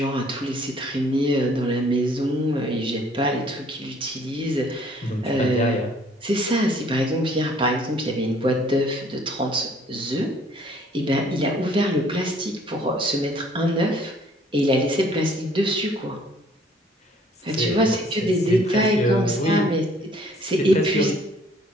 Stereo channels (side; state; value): both; normal; correlation 0.59